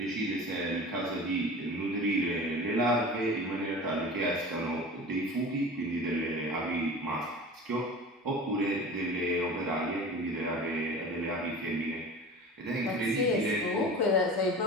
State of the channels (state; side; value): normal; both; correlation 0.36